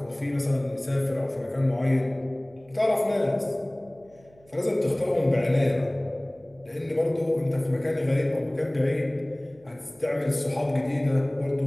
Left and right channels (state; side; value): noise; right; hum, 28 dB below the sound